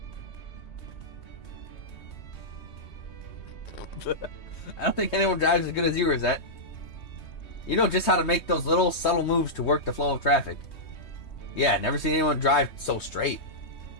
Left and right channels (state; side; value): late; right; 3.2 ms